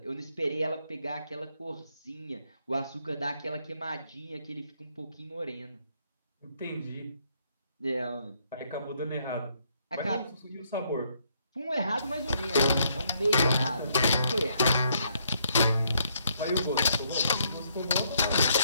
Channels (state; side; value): inverted; both; correlation -0.71